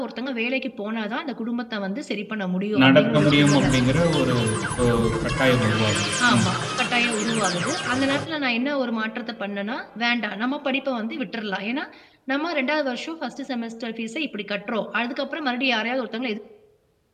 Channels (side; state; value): both; identical; correlation 1.00